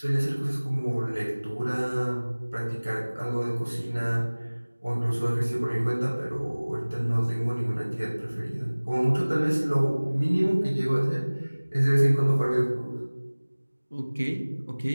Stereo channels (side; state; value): both; inverted; correlation -1.00